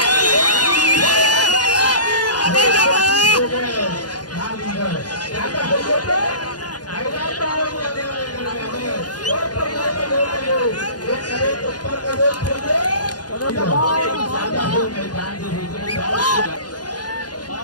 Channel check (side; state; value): right; late; 0.69 ms